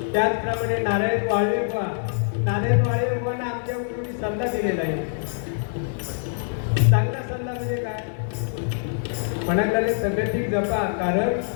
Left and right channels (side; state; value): right; silent; digital silence